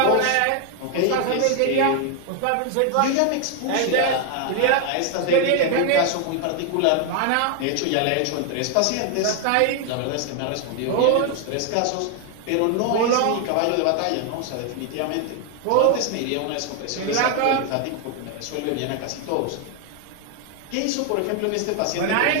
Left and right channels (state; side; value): different; both; correlation 0.00